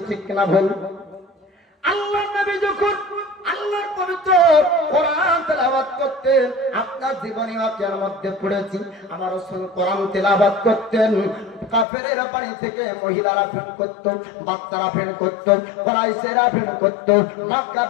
ঠিক কিনা ভুল? আল্লাহর নবী যখন আল্লাহর পবিত্র কোরআন তেলাওয়াত করতেন, আপনার জীবনী ওয়াকিয়ার মধ্যে পড়েছি, আমার রাসূল কোরআন তেলাওয়াত করতেন, কাফেরের বাড়ি থেকে মহিলারা ভিড় করত, বাচ্চারা ভিড় করত, কুরাইশেরা ভিড় করত,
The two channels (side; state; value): right; drops out; at 11.9 s